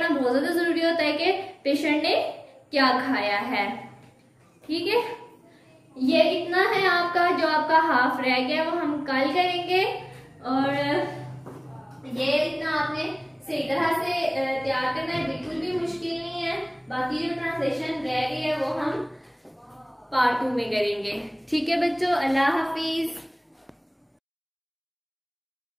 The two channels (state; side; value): identical; both; correlation 1.00